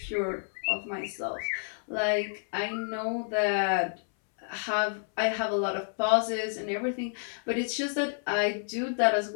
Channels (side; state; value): right; silent; 58 dB below the other